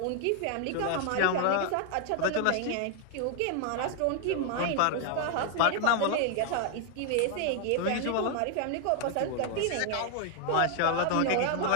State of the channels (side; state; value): both; different; correlation 0.00